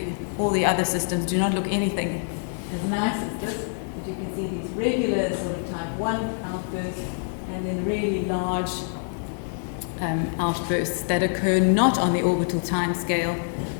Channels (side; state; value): right; silent; digital silence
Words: all the other systems do not look anything as nice as this. But you can see these regular sort of type 1 outbursts, and then really large outbursts that occur not on the orbital time scale